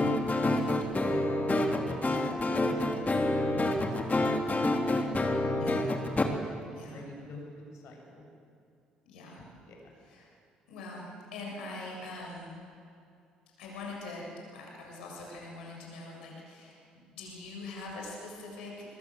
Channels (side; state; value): both; normal; correlation 0.82